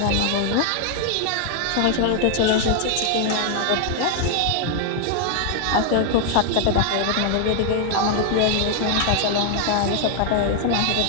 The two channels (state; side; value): different; both; correlation 0.00